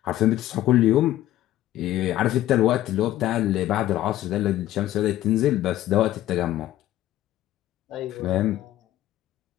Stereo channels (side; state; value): right; quieter; 13.9 dB